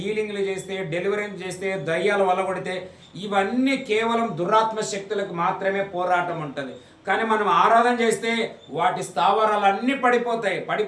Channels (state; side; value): identical; both; correlation 1.00